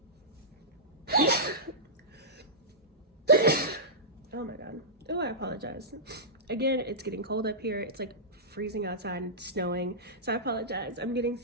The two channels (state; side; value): normal; both; correlation -0.16